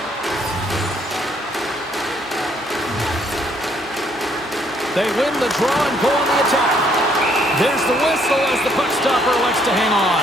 They win the draw and go on the attack. There's the whistle as the puck stopper elects to hang on.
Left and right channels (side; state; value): both; normal; correlation 0.67